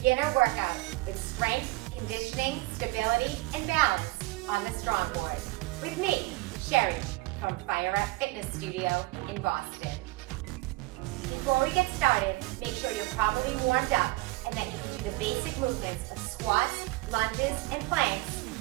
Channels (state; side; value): quieter; left; 21.7 dB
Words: workout with strength, conditioning, stability, and balance on the StrongBoard with me, Sheri, from Fire Up Fitness Studio in Boston. Before we get started, make sure you're properly warmed up and that you can do the basic movements of squats, lunges, and planks